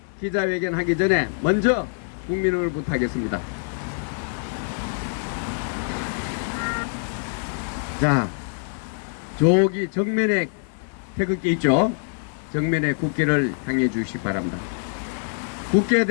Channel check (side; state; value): right; silent; digital silence